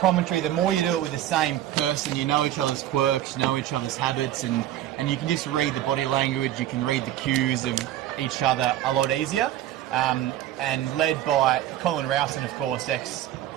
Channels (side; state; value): left; quieter; 12.7 dB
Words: The more you do it with the same person, you know each other's quirks, you know each other's habits, and you can just read the body language, you can read the cues of each other a lot easier. And led by Colin Rowson, of course,